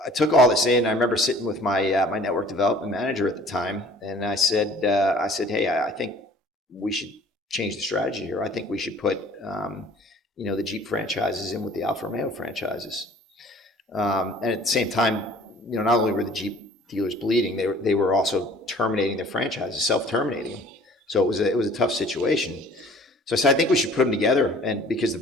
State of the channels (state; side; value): normal; both; correlation 0.51